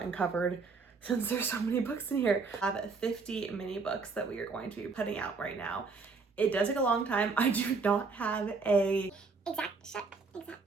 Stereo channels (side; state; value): left; quieter; 4.5 dB